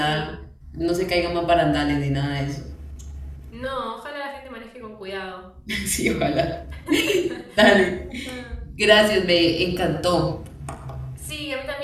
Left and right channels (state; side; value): identical; both; correlation 1.00